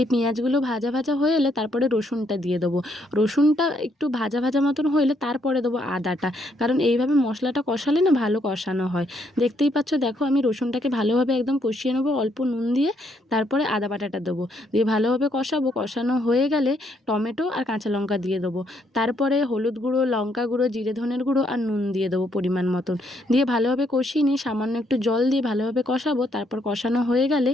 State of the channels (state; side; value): normal; both; correlation 0.72